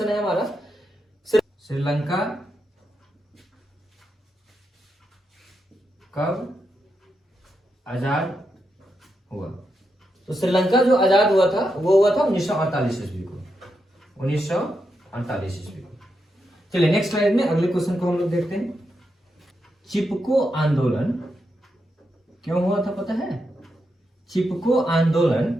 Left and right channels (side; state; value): both; normal; correlation 0.85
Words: है हमारा श्रीलंका कब आजाद हुआ? तो श्रीलंका जो आजाद हुआ था वो हुआ था 1948 ईस्वी को, 1948 ईस्वी को। चलिए नेक्स्ट स्लाइड में अगले क्वेश्चन को हम लोग देखते हैं। चिपको आंदोलन क्यों हुआ था पता है? चिपको